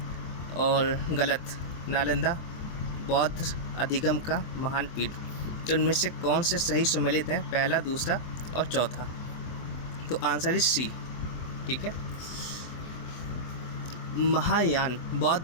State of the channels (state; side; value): late; right; 24 ms